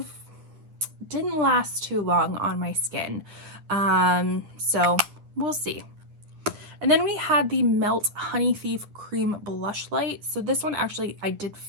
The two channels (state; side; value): late; left; 10 ms